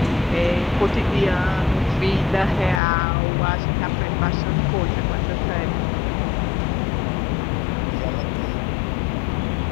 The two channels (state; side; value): drops out; right; at 2.8 s